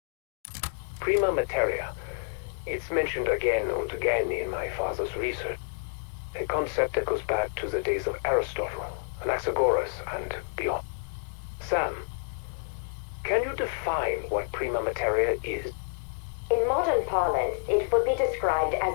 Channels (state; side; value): silent; right; digital silence